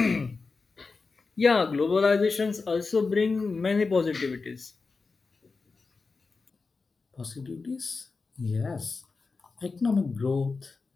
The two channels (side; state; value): right; quieter; 4.3 dB